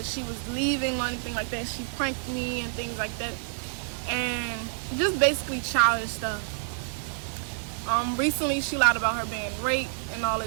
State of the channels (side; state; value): left; silent; 59 dB below the other